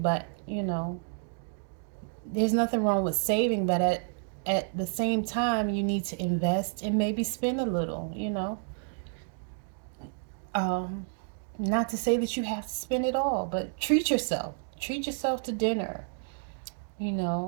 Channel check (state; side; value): silent; left; digital silence